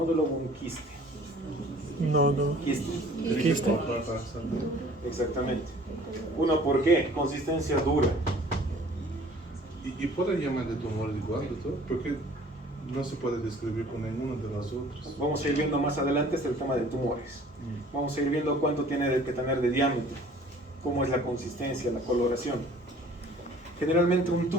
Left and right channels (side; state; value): both; normal; correlation 0.51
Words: o un quiste? No, no. Quiste. Quiste. Exactamente. Uno, ¿por qué? Consistencia dura. Y puede llamar de tumor igual, doctor, porque no se puede describir con ninguno de las otras. Vamos a ir viendo más adelante el tema de tumores. Vamos a ir viendo cuánto tiene que tener de diámetro, cómo es la consistencia, la coloración. Generalmente un